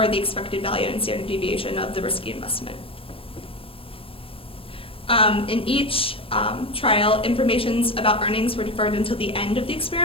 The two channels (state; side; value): late; right; 0.27 ms